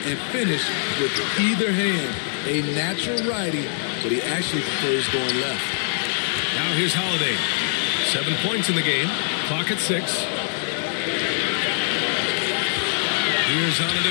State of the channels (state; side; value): silent; right; digital silence